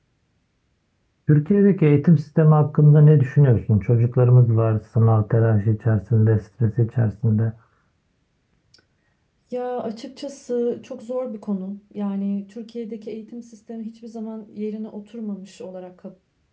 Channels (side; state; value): both; identical; correlation 1.00